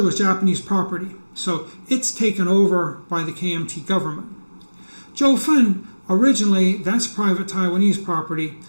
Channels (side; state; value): both; inverted; correlation -1.00